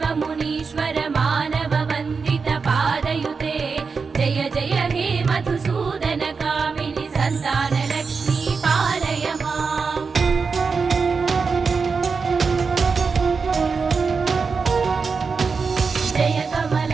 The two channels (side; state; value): left; quieter; 5.0 dB